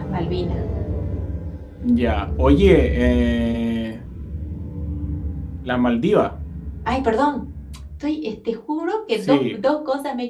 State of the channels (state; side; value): identical; both; correlation 1.00